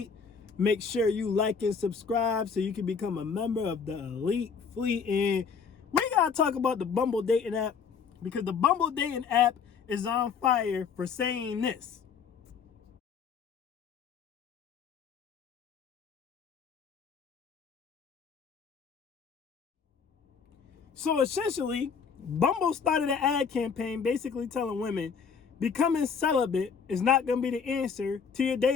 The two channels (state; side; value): quieter; right; 6.1 dB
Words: Make sure you like and subscribe so you can become a member of the Elite Fleet. And we gotta talk about the Bumble dating app, because the Bumble dating app is on fire for saying this. So essentially, Bumble started an ad campaign basically telling women becoming celibate is not going to be the answer to your